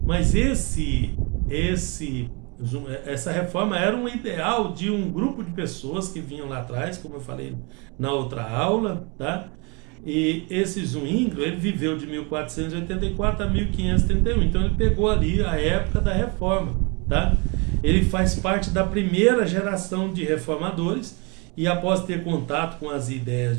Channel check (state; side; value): quieter; left; 30.7 dB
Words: Mas essa reforma era um ideal de um grupo de pessoas que vinham lá atrás, como eu falei na outra aula, tá? E esse Zwingli, ele viveu de 1484 a 1531, então ele pegou ali a época da reforma, tá? Ele faz parte da primeira geração de reformadores e, após ter contato com as ideias